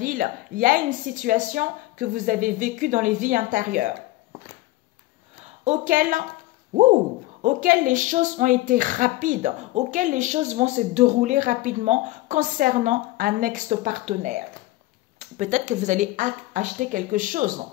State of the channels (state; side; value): quieter; right; 18.0 dB